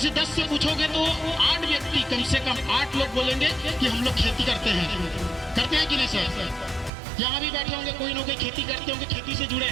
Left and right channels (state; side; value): drops out; left; at 6.9 s